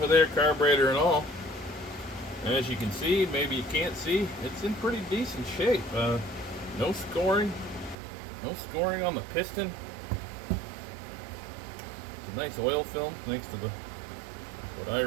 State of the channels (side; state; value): left; drops out; at 8.0 s